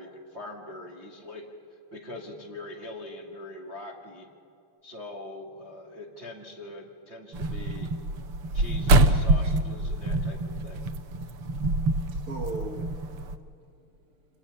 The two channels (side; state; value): left; late; 6.9 ms